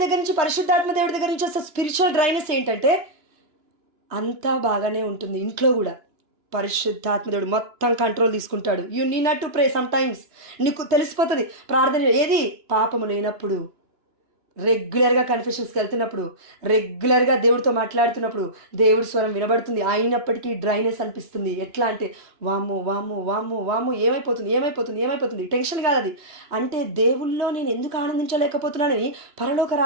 దగ్గర నుంచి, పరిశుద్ధాత్మ దేవుడి దగ్గర నుంచి వస్తే స్పిరిచువల్ డ్రైనెస్ ఏంటంటే అంతా బాగానే ఉంటుంది. ఇంట్లో కూడా పరిశుద్ధాత్మ దేవుడు మొత్తం కంట్రోల్ తీసుకుంటాడు. You need not to pray. Some times నీకు తెలిసిపోతుంది ప్రార్థన ఏది పాపము లేనప్పుడు, రెగ్యులర్గా కన్ఫెషన్స్కి వెళ్తున్నప్పుడు, రెగ్యులర్గా దేవుడితో మాట్లాడుతున్నప్పుడు దేవుడి స్వరం వినబడుతుంది. అయినప్పటికీ డ్రైనెస్ అనిపిస్తుంది. ఎట్లా అంటే వాము వాము వాము వాము ఏమైపోతుంది టెన్షన్ కాదు అది. అంటే దేవుళ్ళో నేను ఎందుకు ఆనందించలేకపోతున్నానని పరలోక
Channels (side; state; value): left; late; 2.9 ms